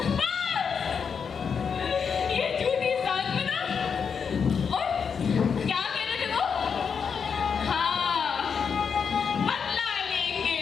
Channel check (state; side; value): quieter; right; 6.4 dB